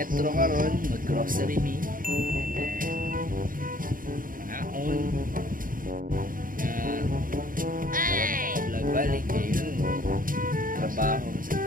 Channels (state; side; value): late; left; 0.40 ms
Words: karon mag-grocery me. Ngaon. Vlog balik yun. Trabaho.